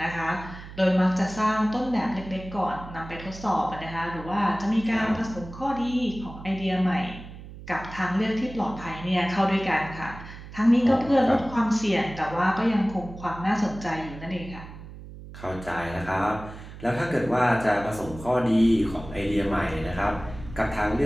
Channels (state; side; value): noise; right; hum, 14 dB below the sound